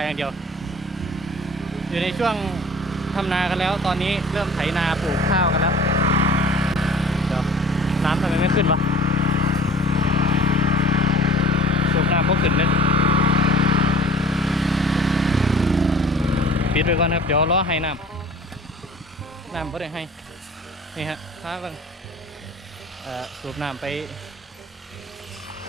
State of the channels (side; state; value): both; normal; correlation 0.47